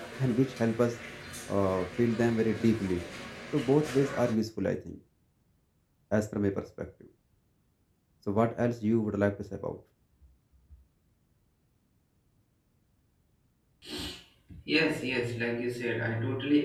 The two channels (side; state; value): both; identical; correlation 1.00